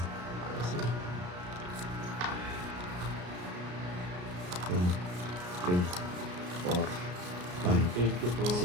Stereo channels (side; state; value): left; late; 33 ms